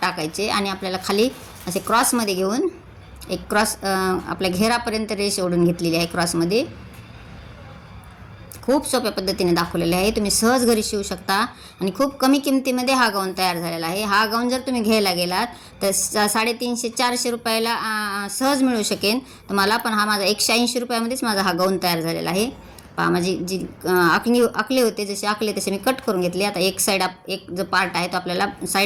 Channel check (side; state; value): both; identical; correlation 1.00